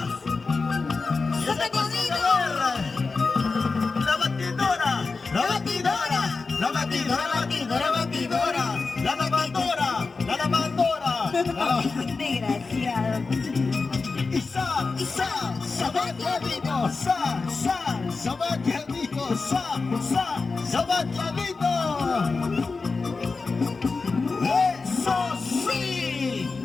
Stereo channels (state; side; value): quieter; right; 4.2 dB